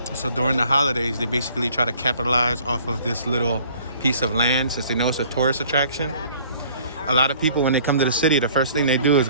So during the holidays, they basically try to capitalize off of this little piece of land since they know it's a tourist attraction. A lot of people, when they come to the city, the first thing they do is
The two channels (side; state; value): both; inverted; correlation -0.55